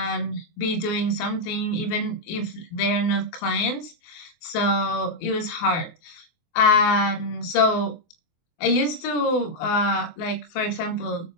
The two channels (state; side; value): late; right; 23 ms